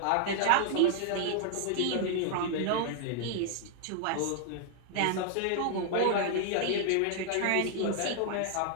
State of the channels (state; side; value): different; both; correlation 0.00